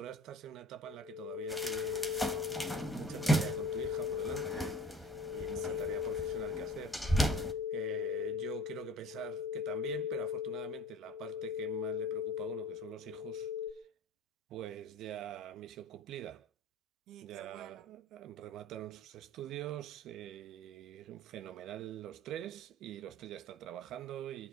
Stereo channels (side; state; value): both; normal; correlation 0.43